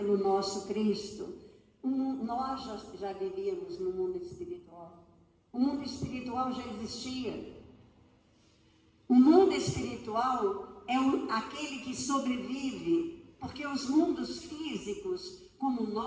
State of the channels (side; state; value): both; identical; correlation 1.00